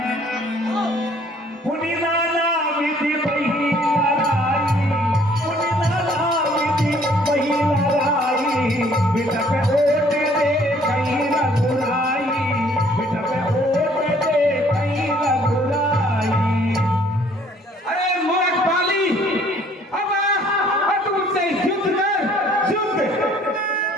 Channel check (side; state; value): both; normal; correlation 0.59